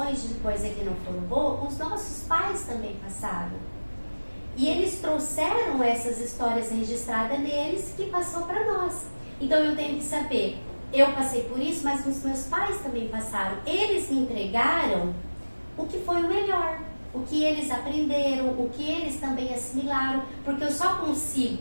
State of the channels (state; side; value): inverted; both; correlation -1.00